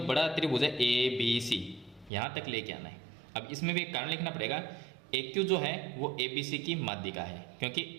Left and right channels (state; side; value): drops out; left; at 2.1 s